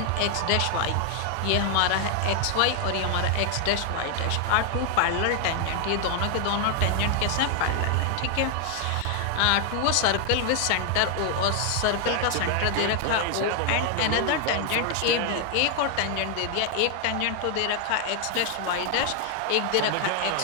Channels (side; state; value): both; different; correlation 0.00